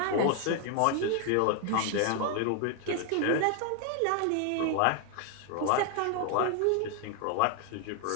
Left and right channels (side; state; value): both; different; correlation 0.00